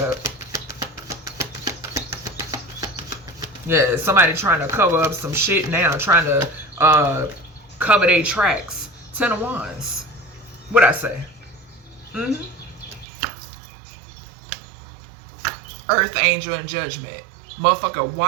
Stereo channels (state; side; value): drops out; left; at 13.1 s